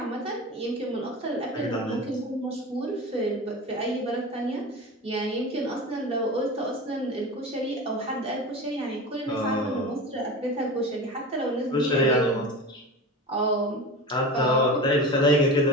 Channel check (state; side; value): normal; both; correlation 0.30